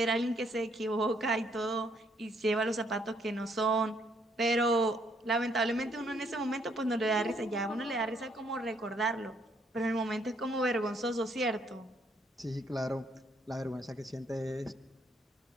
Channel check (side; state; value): both; normal; correlation 0.69